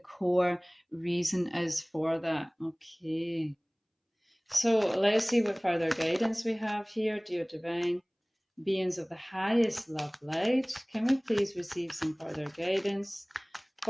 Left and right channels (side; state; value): both; identical; correlation 1.00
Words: reason is for that. Okay, so let's see what further guidance we have here, dear divine beings of the highest love light. Can we please receive some further guidance